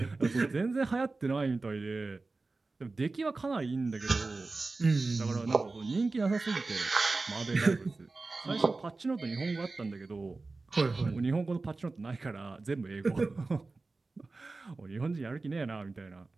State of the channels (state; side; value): quieter; left; 3.6 dB